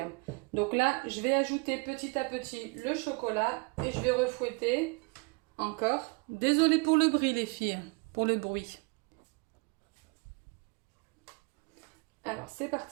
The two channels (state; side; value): quieter; left; 29.9 dB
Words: Donc là, je vais ajouter petit à petit le chocolat et je vais refouetter encore. Désolée pour le bruit, les filles, pour le bruit. Alors, c'est